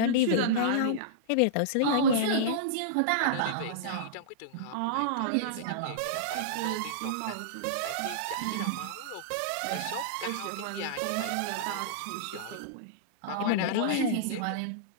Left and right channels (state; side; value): different; both; correlation -0.02